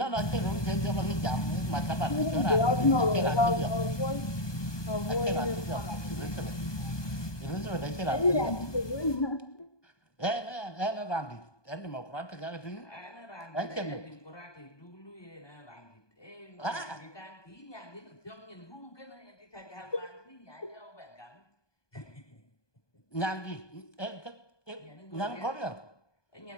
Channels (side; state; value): right; late; 1.2 ms